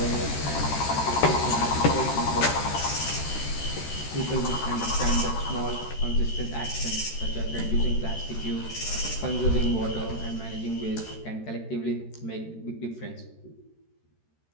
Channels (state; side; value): late; right; 13 ms